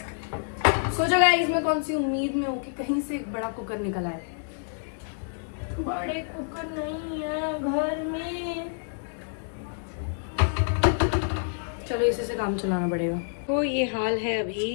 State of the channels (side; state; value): right; silent; digital silence